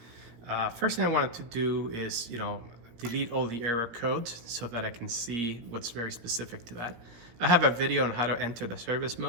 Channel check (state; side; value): late; left; 17 ms